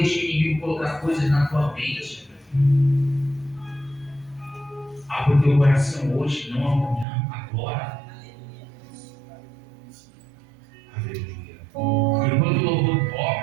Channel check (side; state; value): left; drops out; at 7.1 s